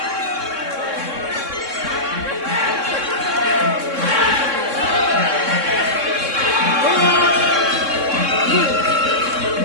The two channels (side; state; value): left; late; 3.6 ms